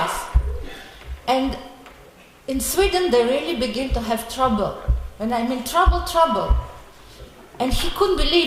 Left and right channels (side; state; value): both; identical; correlation 1.00